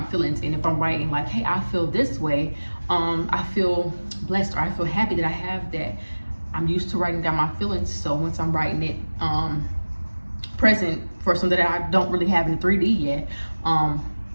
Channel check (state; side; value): inverted; both; correlation -1.00